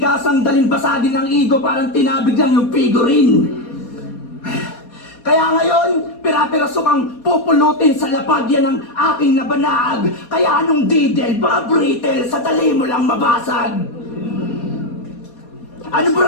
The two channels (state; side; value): late; right; 4.2 ms